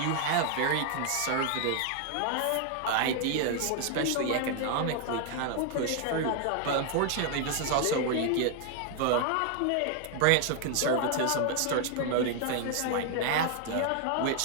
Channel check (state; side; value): different; both; correlation 0.00